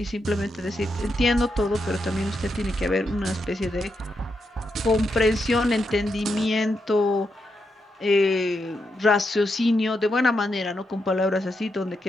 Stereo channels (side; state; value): both; normal; correlation 0.83